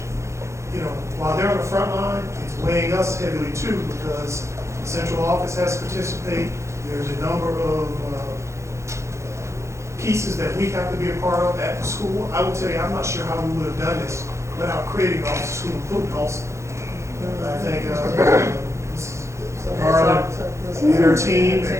you know, while they're on the front line, it's weighing us heavily too, because the central office has to participate. There's a number of pieces that we have to be a part of at the school. I will tell you, I'm not sure how we would have done this without creating Office of School Improvement also. I think Mrs. Garland and her team,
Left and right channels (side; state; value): left; late; 0.14 ms